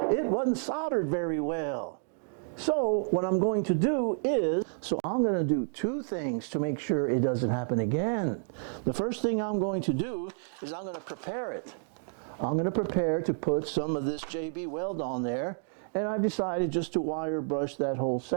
wasn't soldered very well. So what I'm going to do is, I'm going to do two things to make sure it doesn't happen again. The first thing I'm going to do is I'm going to prepare it. I'm going to prepare to put some of this JB weld on there, and I've decided just to wire brush that whole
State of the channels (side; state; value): left; silent; digital silence